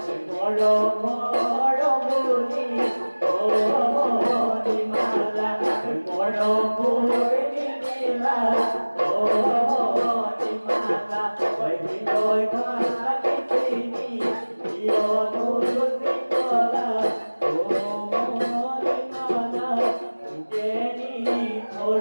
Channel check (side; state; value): both; inverted; correlation -1.00